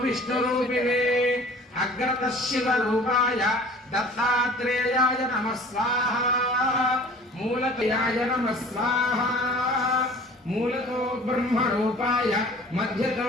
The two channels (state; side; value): normal; both; correlation 0.47